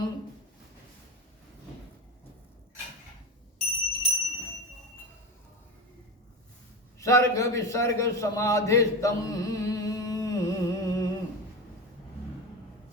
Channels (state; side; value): normal; both; correlation 0.22